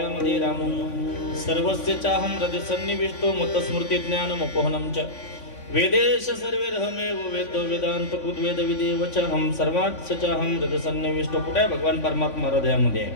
रामो सर्वस्य चाहम हृदय सन्निविष्टो मतस्मृती ज्ञान मोपोहनम च वेदेश सर्वे रहमेव वेदो वेदांत कृद्वेद विदेव च हम सर्वात चाहम हृदय सन्निविष्टो. कुठे आहे भगवान परमात्मा? हृदयामध्ये.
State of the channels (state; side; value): late; right; 3.5 ms